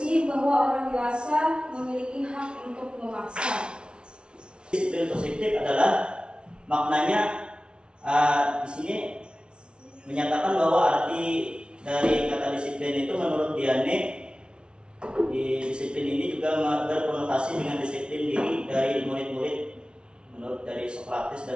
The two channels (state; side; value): late; left; 0.056 ms